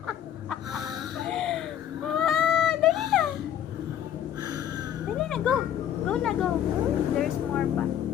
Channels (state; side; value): quieter; right; 10.4 dB